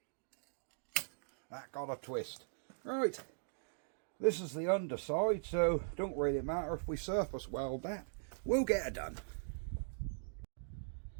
that got a twist. Right, this is the underside, so don't really matter if we surface weld that. We'll get it done.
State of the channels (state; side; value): silent; left; digital silence